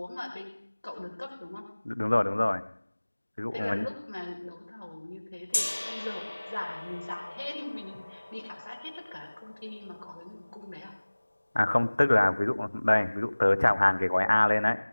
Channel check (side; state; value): both; inverted; correlation -1.00